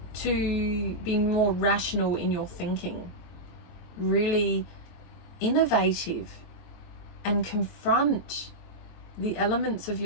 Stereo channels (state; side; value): late; right; 23 ms